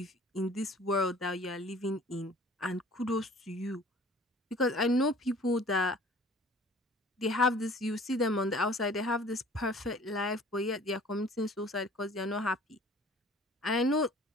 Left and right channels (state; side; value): normal; both; correlation 0.50